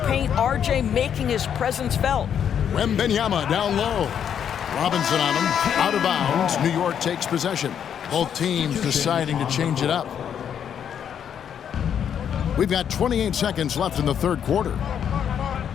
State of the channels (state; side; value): quieter; right; 8.6 dB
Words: paint, RJ making his presence felt. Wembanyama down low. Robinson on him. Out of bounds. New York takes possession. Both teams deciding to change it up. We've got 28 seconds left in the third quarter.